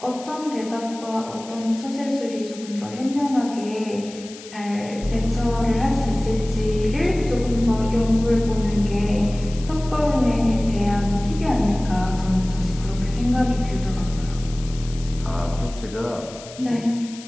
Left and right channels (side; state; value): left; noise; hiss, 17 dB below the sound